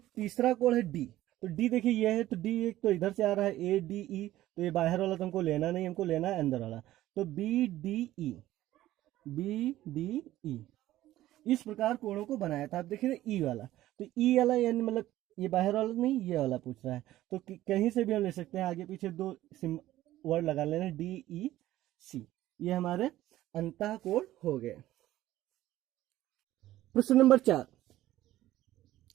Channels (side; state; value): left; quieter; 14.9 dB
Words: तीसरा कोण है D। तो D देखिए ये है, तो D एक तो इधर से आ रहा है ADE, तो ये बाहर वाला तो हमको लेना नहीं, हमको लेना है अंदर वाला। तो BDE इस प्रकार कोणों को बनाया था। आप देखिए E वाला, तो E वाला यानी मतलब ये बाहर वाला नहीं, ये वाला पूछ रहा है। तो कहीं से भी हम ले सकते हैं, आगे पीछे 2 वर्ड लगा लेना, DEC, ये हमारे अंतःकोण हो गए। प्रश्न नंबर 4,